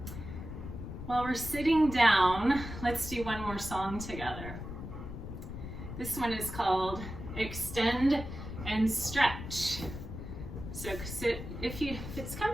While we're sitting down, let's do one more song together. This one is called extend and stretch. So sit, if it's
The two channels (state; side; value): noise; left; rumble, 9 dB below the sound